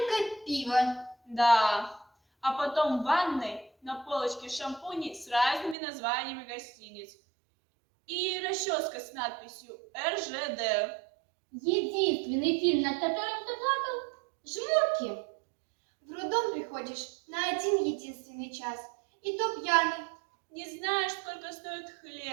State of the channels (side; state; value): left; drops out; at 5.8 s